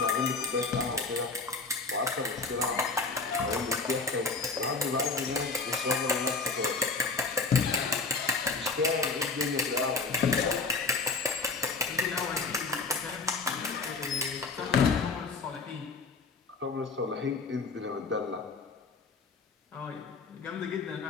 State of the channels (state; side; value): quieter; right; 4.1 dB